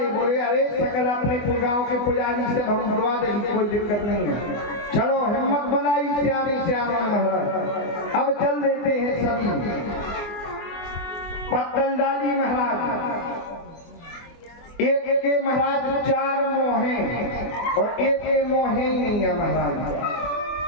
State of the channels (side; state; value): right; late; 24 ms